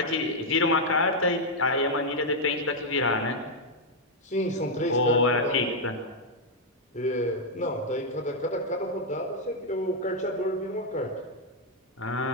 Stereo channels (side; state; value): both; normal; correlation -0.02